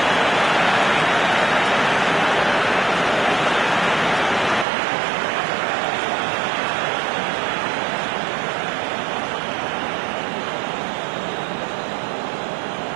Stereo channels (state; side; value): drops out; left; at 4.7 s